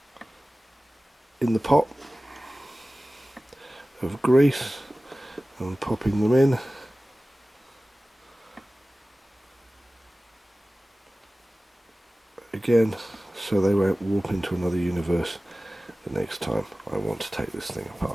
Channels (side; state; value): both; normal; correlation 0.97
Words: in the pot of grease and popping them in. Again, so they won't warp into another universe the next time I want to take this thing